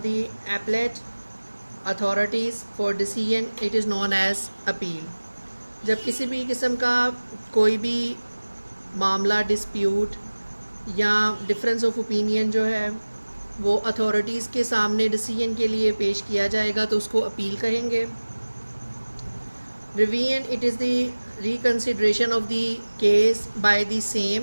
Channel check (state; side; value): inverted; both; correlation -1.00